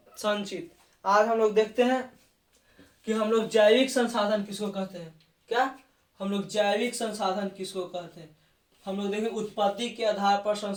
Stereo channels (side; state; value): both; identical; correlation 1.00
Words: आज हम लोग देखते हैं कि हम लोग जैविक संसाधन किसको कहते हैं। क्या हम लोग जैविक संसाधन किसको कहते हैं? हम लोग देखें उत्पत्ति के आधार पर